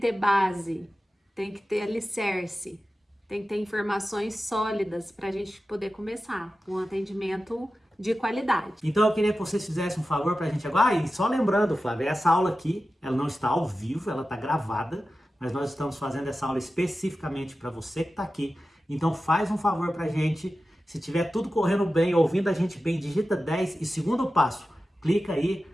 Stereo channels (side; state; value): both; normal; correlation 0.94